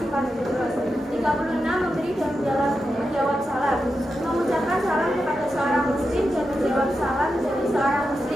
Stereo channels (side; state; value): both; normal; correlation 0.88